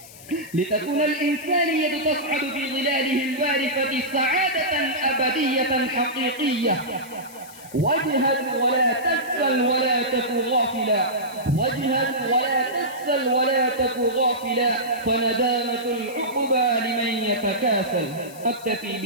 لتكون الإنسانية تصعد في ظلاله الوارفة سعادة أبدية حقيقية. واجهد ولا تكسل ولا تك غافلا، واجهد ولا تكسل ولا تك غافلا، فندامة العقبى لمن يتكاسل. أكتفي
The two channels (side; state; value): left; noise; hiss, 19 dB below the sound